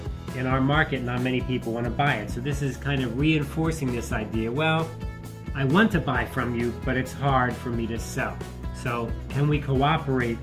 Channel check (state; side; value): identical; both; correlation 1.00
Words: in our market, not many people want to buy it. So this is kind of reinforcing this idea. Well, I want to buy from you, but it's hard for me to sell. So can we cooperate